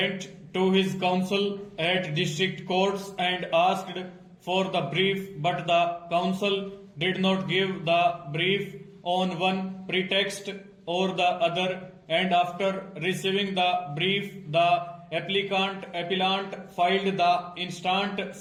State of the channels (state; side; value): identical; both; correlation 1.00